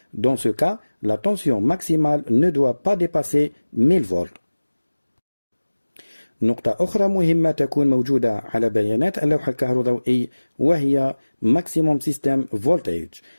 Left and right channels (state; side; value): inverted; both; correlation -1.00